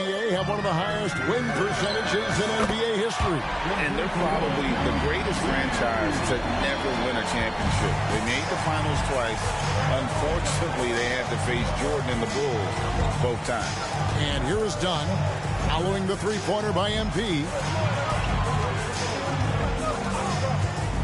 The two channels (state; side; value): identical; both; correlation 1.00